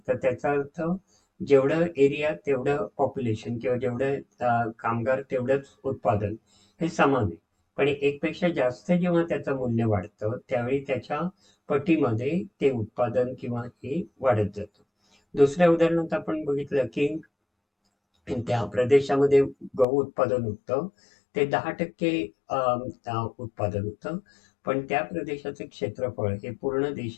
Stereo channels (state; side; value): drops out; right; at 19.9 s